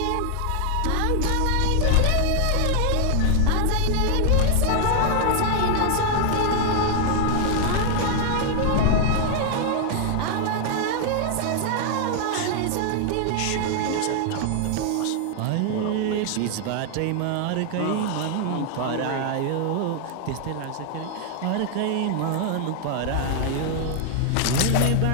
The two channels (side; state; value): both; different; correlation 0.00